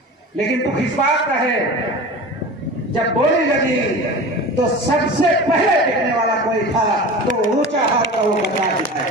लेकिन दुख इस बात का है, जब बोली लगी तो सबसे पहले दिखने वाला कोई था तो ऊंचा हाथ का वो बता दिखाए।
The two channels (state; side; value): normal; both; correlation 0.34